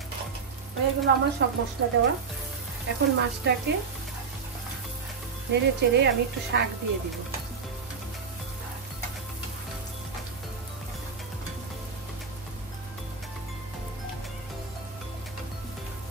এগুলো আমার সব মশলা দেওয়া। এখন মাছটাকে নেড়ে চেড়ে আমি একটু শাক দিয়ে দিব।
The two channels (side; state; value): left; quieter; 5.4 dB